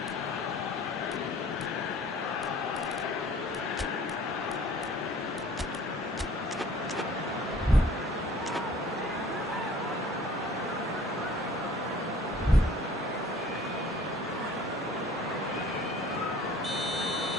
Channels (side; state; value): both; normal; correlation 0.52